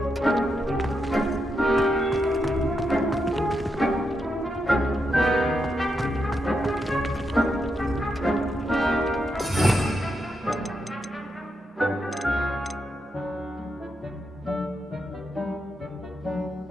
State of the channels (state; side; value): normal; both; correlation 0.83